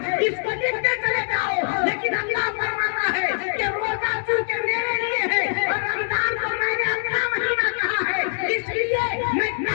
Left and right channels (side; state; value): right; silent; digital silence